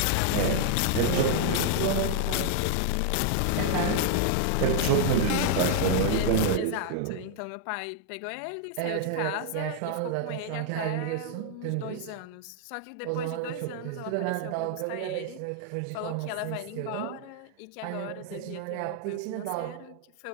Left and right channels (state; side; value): different; both; correlation -0.01